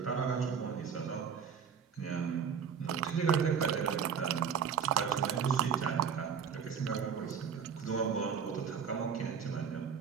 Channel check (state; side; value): quieter; left; 7.0 dB